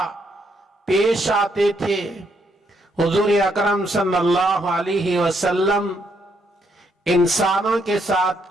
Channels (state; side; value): normal; both; correlation 0.74